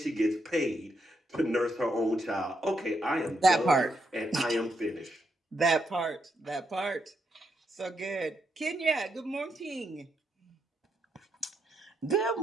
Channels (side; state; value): both; normal; correlation 0.79